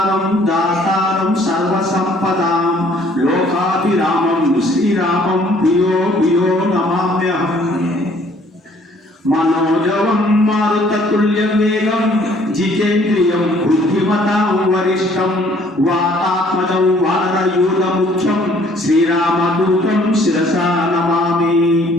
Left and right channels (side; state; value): both; normal; correlation 0.60